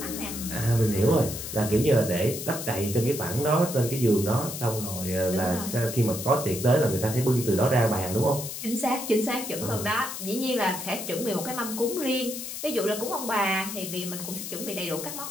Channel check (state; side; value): noise; left; hiss, 7 dB below the sound